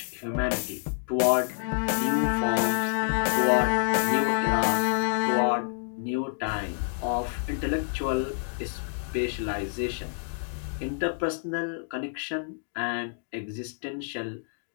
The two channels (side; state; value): right; silent; digital silence